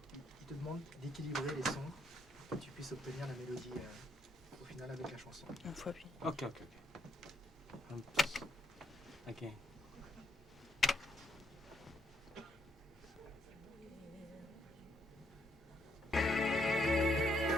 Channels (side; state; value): both; normal; correlation 0.74